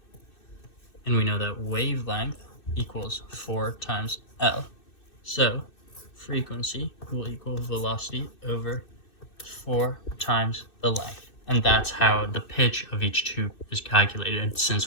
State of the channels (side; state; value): right; late; 2.6 ms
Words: And we know that wavelength equals 4 times L. So frequency will equal velocity over 4 times the length. And that's how the pitch of each tube is calculated,